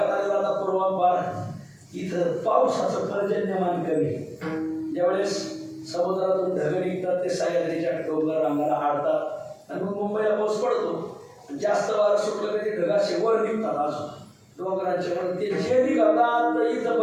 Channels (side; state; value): both; identical; correlation 1.00